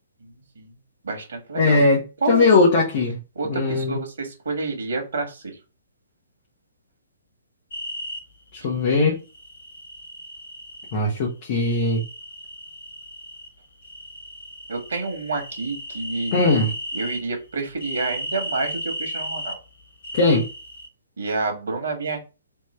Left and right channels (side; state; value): both; inverted; correlation -0.49